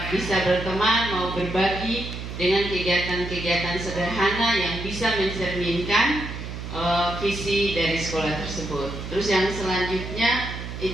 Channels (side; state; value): right; noise; hum, 8 dB below the sound